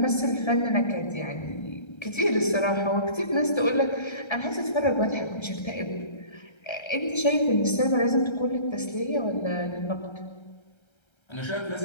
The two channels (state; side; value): late; right; 1.3 ms